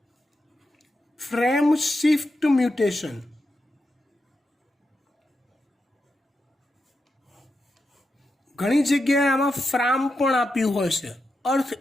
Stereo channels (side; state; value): both; normal; correlation 0.87